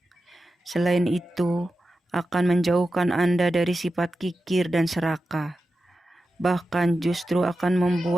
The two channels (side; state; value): both; normal; correlation 0.92